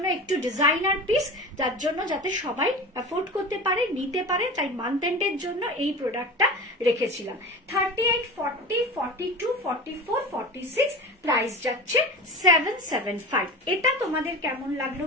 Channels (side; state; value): both; normal; correlation 0.32